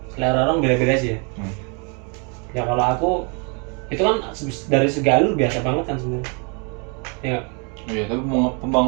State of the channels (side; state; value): left; quieter; 35.7 dB